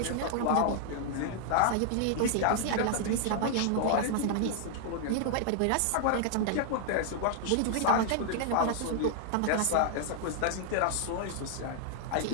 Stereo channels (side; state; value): both; different; correlation 0.00